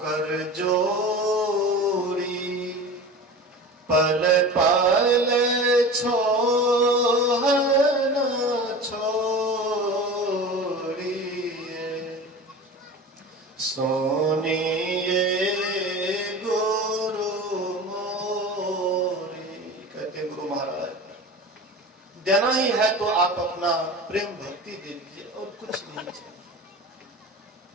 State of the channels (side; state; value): both; normal; correlation 0.34